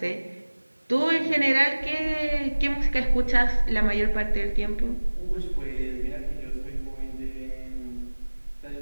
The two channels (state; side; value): inverted; both; correlation -1.00